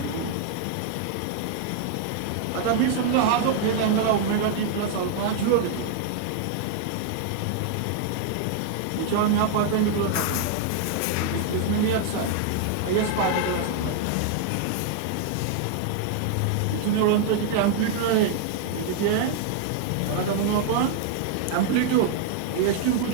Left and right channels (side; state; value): both; different; correlation 0.00